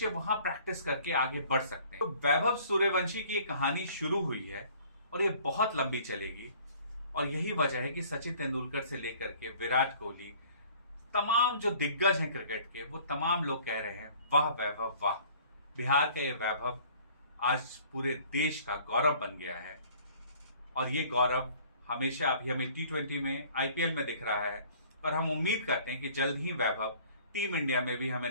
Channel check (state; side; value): inverted; both; correlation -0.53